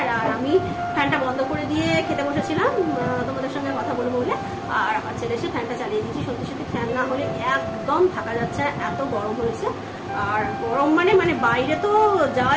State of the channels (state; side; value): identical; both; correlation 1.00